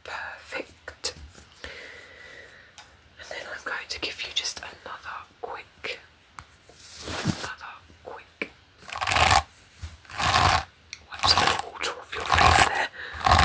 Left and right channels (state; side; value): identical; both; correlation 1.00